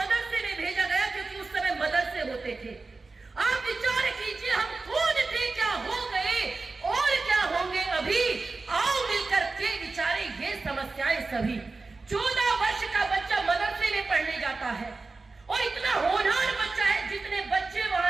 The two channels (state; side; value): quieter; left; 3.8 dB